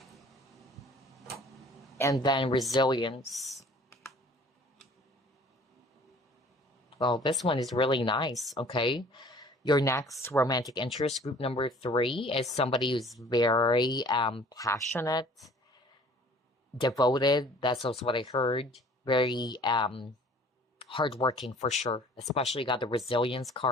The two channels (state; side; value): normal; both; correlation 0.51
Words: and then Resilience. Well, this one is really nice, okay? Your next romantic interest, group number 3, is somebody who's very passionate, devoted. That's also what I heard. Very hardworking for sure. Especially got the Resilience